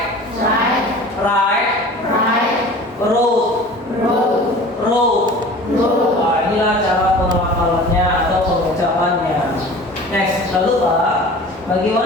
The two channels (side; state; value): both; normal; correlation 0.41